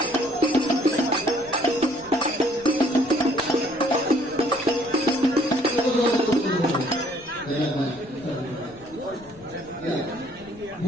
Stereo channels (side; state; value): left; noise; rumble, 23 dB below the sound